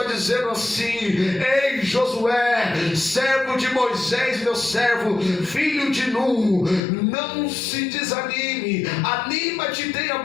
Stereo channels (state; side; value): drops out; right; at 6.8 s